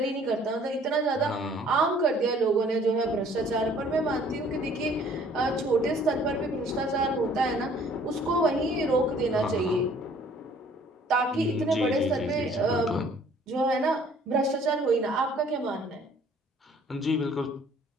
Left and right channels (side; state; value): both; normal; correlation 0.57